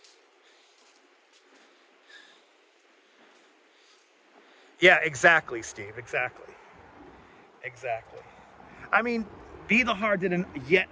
Yeah, exactly, Steve. Exactly. Exactly. I mean, Be the Heart did yet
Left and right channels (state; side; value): identical; both; correlation 1.00